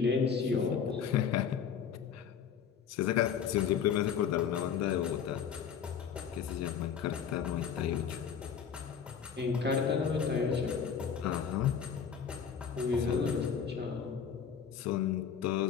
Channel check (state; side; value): quieter; right; 7.4 dB